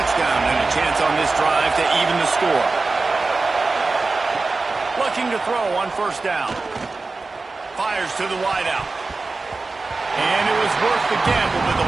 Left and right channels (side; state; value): left; quieter; 3.7 dB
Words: and a chance on this drive to even the score. Looking to throw on first down. Fires to the wideout. And it was worth the gamble, but the